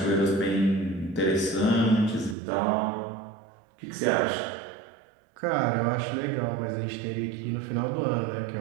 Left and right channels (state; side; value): drops out; left; at 2.4 s